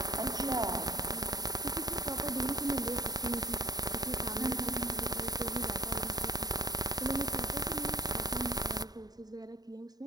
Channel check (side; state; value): left; late; 0.19 ms